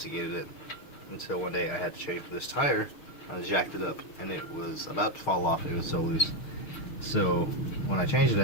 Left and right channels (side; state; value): right; late; 6.5 ms